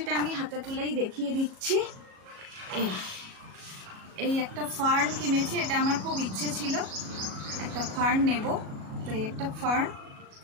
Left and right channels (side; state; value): left; late; 37 ms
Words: আমি হাতে তুলেই দেখিয়ে দিচ্ছি। এই একটা ফার্ন কিনেছি, এটা আমার খুব ইচ্ছে ছিল একটা ফার্ন নেব। তো এই একটা ফার্ন,